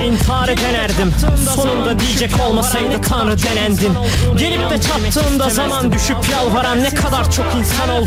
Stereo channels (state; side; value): identical; both; correlation 1.00